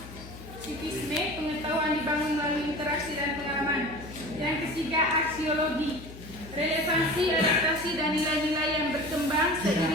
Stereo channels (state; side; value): noise; left; hum, 15 dB below the sound